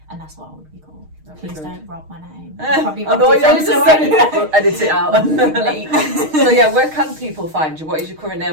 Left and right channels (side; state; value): left; late; 6.4 ms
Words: and that's what I would be called. Please don't rob my name. Probably I know what you're saying. We'll edit it out. So yeah, where can people find you? What is your current name